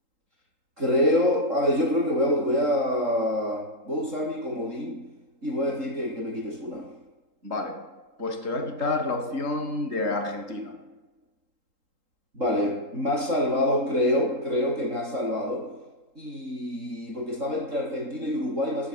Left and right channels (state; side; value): late; left; 3.8 ms